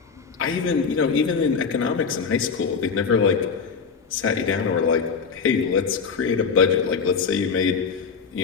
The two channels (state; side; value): quieter; right; 5.7 dB